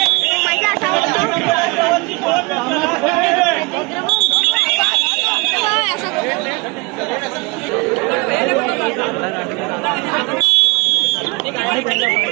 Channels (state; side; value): quieter; left; 26.6 dB